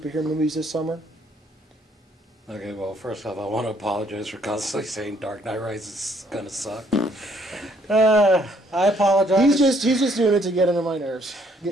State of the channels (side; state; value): both; normal; correlation 0.66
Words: movies this summer? Okay, well, first off, I want to apologize for constantly saying Dark Knight Rises is gonna suck. I apologize. He's just doing it to get under my nerves.